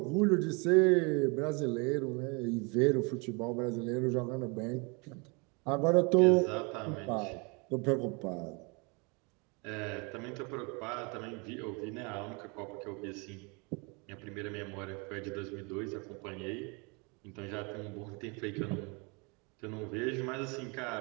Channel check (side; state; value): left; quieter; 31.1 dB